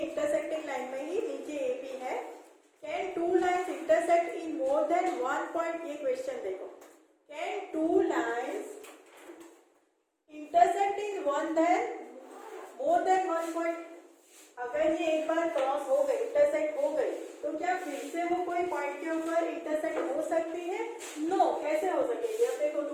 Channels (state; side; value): identical; both; correlation 1.00